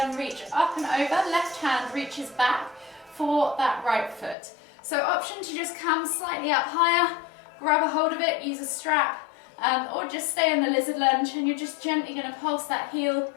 reach up and over. Left hand reaches back for that right foot. So option to just come slightly up higher, grab a hold of it, use a strap, or just stay in the lizard lunge, and you're just gently going to pulse that heel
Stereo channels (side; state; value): right; drops out; at 4.4 s